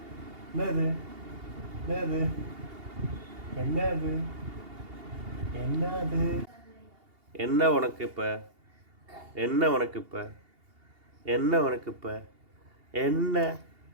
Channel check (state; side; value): late; left; 2.8 ms